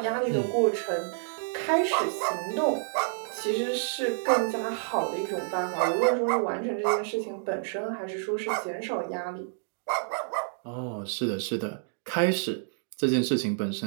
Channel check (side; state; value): left; silent; digital silence